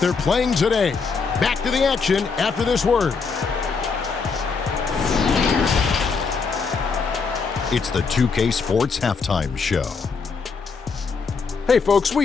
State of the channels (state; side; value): quieter; right; 5.0 dB